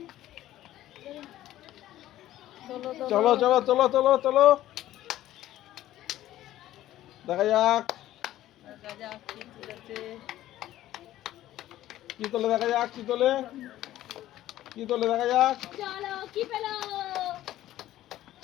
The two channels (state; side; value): quieter; right; 14.0 dB